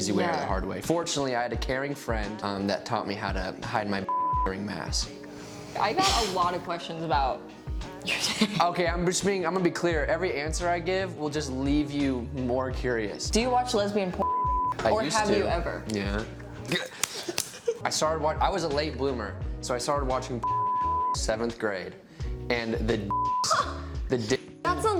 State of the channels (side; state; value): both; identical; correlation 1.00